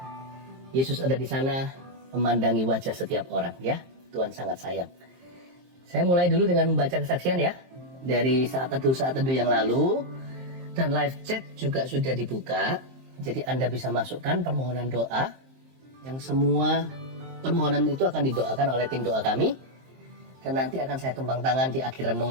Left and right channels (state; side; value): late; left; 23 ms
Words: Yesus ada di sana, memandangi wajah setiap orang, ya. Tuhan sangat sayang. Saya mulai dulu dengan membaca kesaksian ya, dari saat teduh yang lalu. Dan live chat juga sudah dibuka. Jadi Anda bisa masukkan permohonan doa, yang semua permohonan itu akan didoakan oleh tim doa kami. Dan nanti akan saya tumpang tangan di akhir